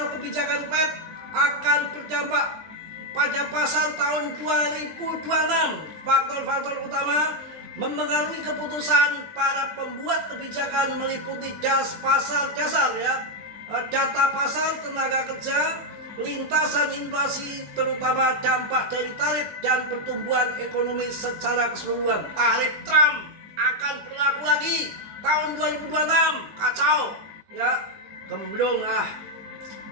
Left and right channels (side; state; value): left; late; 20 ms